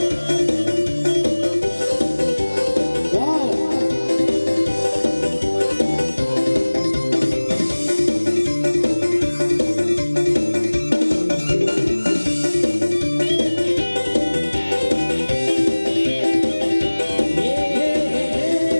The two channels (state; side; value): inverted; both; correlation -1.00